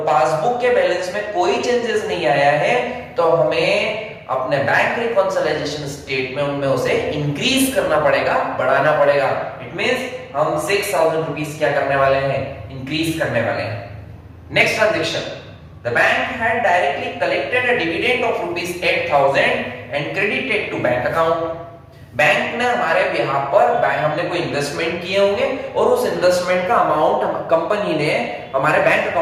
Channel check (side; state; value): both; identical; correlation 1.00